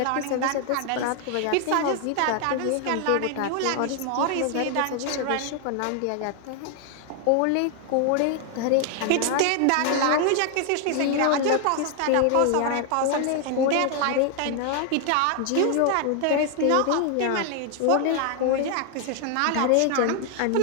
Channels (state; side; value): different; both; correlation 0.00